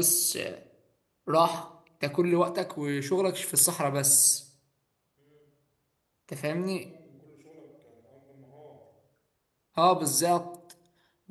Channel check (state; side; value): identical; both; correlation 1.00